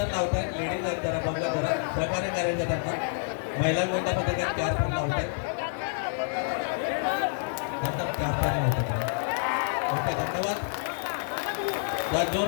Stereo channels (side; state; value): right; silent; digital silence